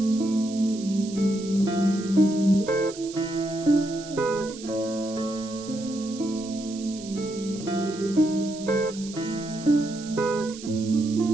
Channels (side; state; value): right; noise; hiss, 15 dB below the sound